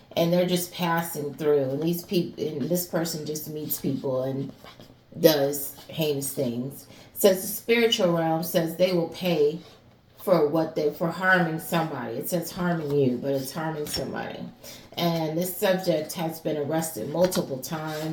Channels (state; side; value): identical; both; correlation 1.00